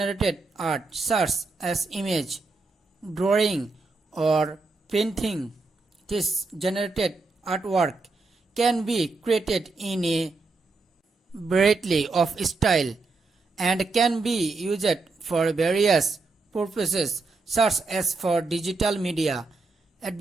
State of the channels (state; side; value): quieter; left; 3.7 dB